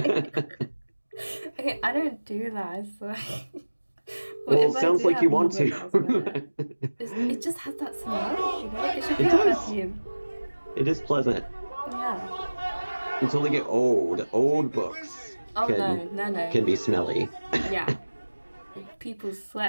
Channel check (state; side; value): inverted; both; correlation -1.00